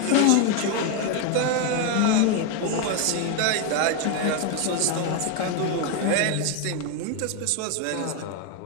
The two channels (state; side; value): different; both; correlation 0.01